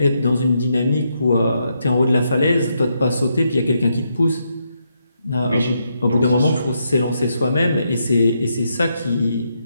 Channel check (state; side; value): inverted; both; correlation -0.80